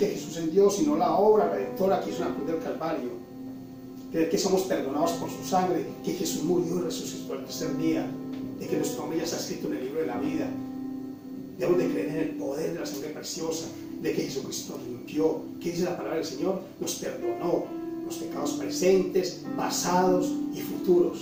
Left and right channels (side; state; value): both; identical; correlation 1.00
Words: Jesús es Dios, sino la obra redentora que hizo en la cruz del Calvario, creer que somos perdonados por su sangre, que Jesús murió y resucitó al tercer día, de que nuestro nombre ya está escrito en el libro de la vida. Debemos de creer en el poder de la sangre preciosa, de que Jesucristo nos limpió, que dice la palabra del Señor, nos perdonó los pecados presentes, pasados y